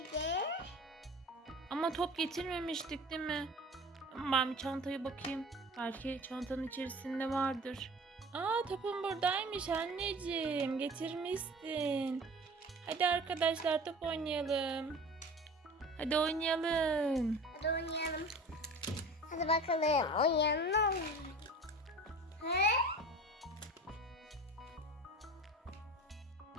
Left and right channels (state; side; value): normal; both; correlation 0.39